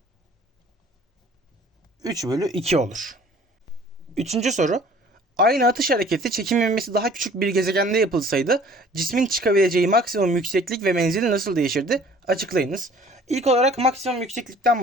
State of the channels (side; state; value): both; normal; correlation 0.52